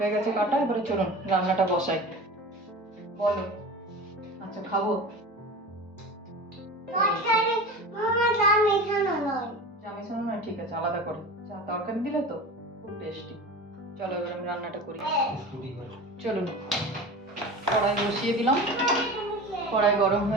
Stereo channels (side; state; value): both; normal; correlation 0.33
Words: গেছে কাটা, এবারে চলুন রান্নাটা বসাই। বলো। আচ্ছা খাবো। তরকারি মামা যা মেশানো নয়। চা মেশানো না, ঠিক আছে আলাদা করে। চা তরকারি দিলে তো খুব টেস্টি। চলো এবার আমি রান্নাটা করি। চলুন, কড়াই বসিয়ে দিলাম। কড়াই গরম